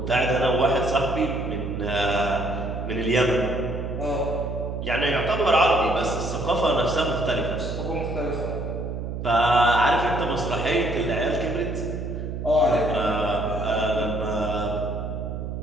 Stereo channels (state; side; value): noise; right; hum, 5 dB below the sound